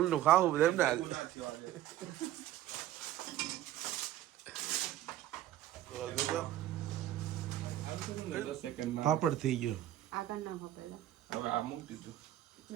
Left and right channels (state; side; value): quieter; left; 13.4 dB